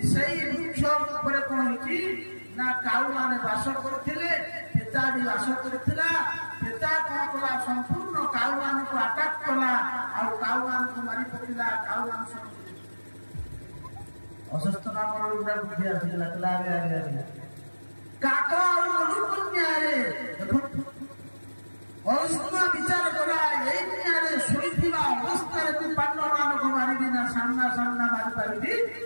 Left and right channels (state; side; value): inverted; both; correlation -1.00